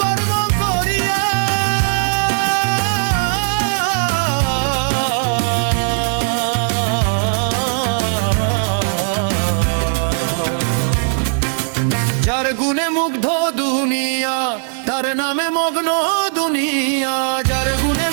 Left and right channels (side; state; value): left; silent; 65 dB below the other